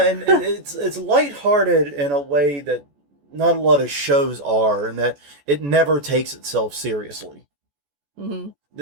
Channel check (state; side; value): late; left; 14 ms